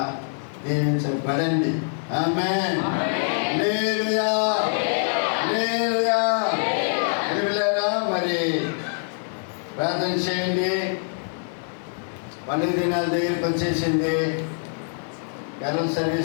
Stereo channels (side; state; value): right; silent; 62 dB below the other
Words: దీవించబడండి. ఆమేన్. హల్లెలూయా, హల్లెలూయా. పిల్లరా మరి ప్రార్థన చేయండి. పండుగ దినాల దగ్గరికి వచ్చేసింది. కరెంట్